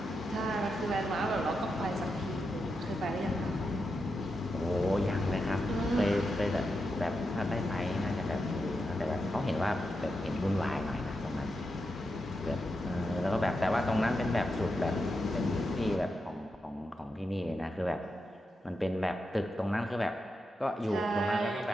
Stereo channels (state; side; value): normal; both; correlation 0.86